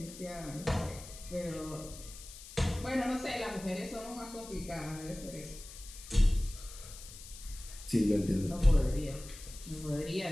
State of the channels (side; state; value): left; noise; hiss, 15 dB below the sound